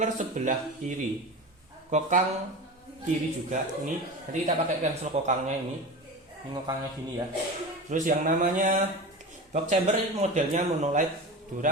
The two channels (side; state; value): both; normal; correlation 0.29